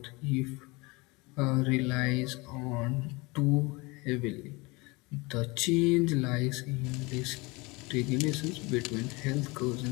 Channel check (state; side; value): quieter; right; 25.3 dB